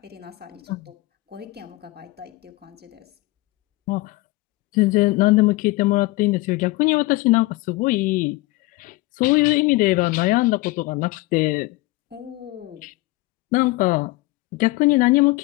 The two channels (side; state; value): right; quieter; 20.9 dB